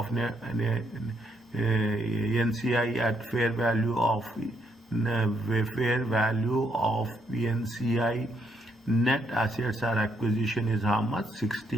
NCI at fair value of NCI net assets or acquisition is how much?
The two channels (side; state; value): both; normal; correlation 0.75